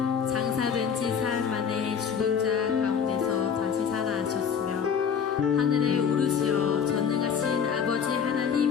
장사된 지 사흘 만에 죽은 자 가운데서 다시 살아나셨으며 하늘에 오르시어 전능하신 아버지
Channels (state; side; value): quieter; right; 7.0 dB